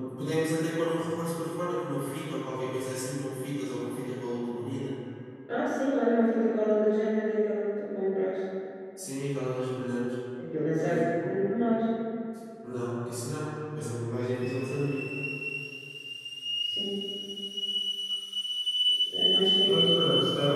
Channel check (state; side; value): identical; both; correlation 1.00